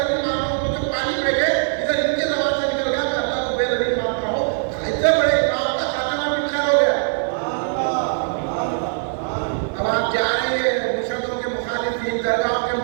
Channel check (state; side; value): silent; left; digital silence